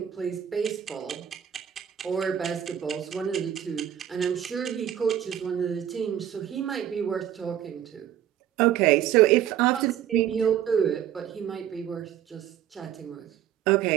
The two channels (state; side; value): quieter; left; 10.5 dB